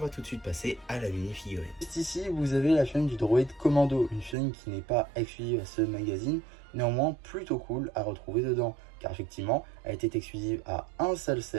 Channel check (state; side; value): drops out; left; at 4.4 s